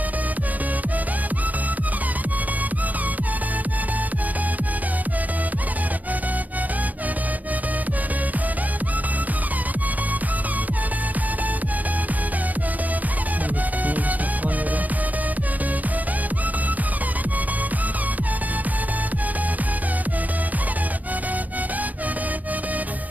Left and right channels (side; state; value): left; late; 0.079 ms